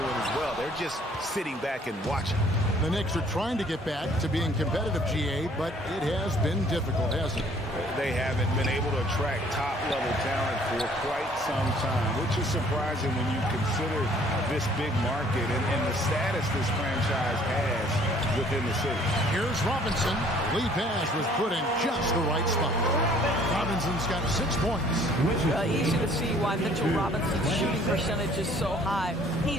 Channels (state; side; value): normal; both; correlation 0.58